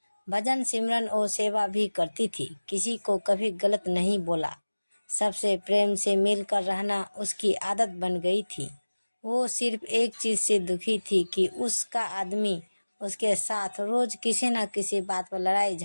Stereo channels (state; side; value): inverted; both; correlation -1.00